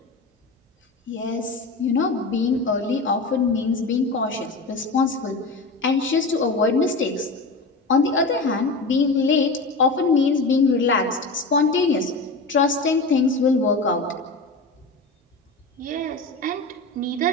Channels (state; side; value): quieter; right; 3.4 dB